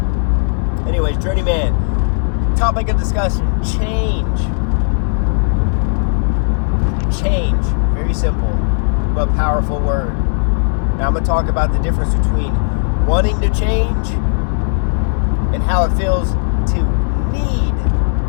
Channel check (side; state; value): right; silent; digital silence